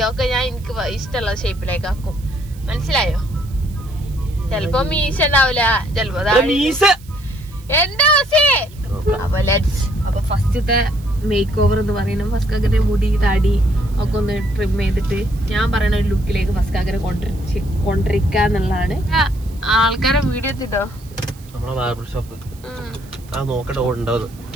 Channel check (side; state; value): right; noise; hiss, 24 dB below the sound